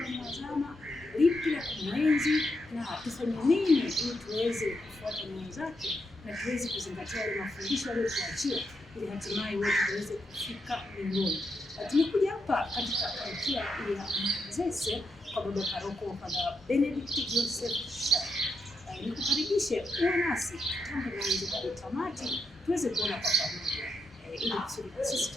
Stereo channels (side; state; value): both; normal; correlation 0.82